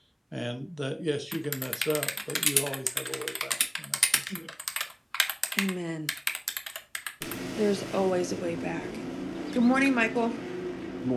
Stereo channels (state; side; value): identical; both; correlation 1.00